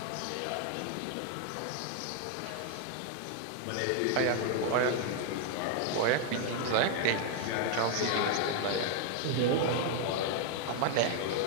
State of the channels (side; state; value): both; different; correlation 0.00